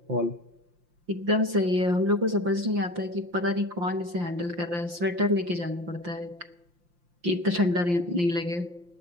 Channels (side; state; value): left; late; 5.7 ms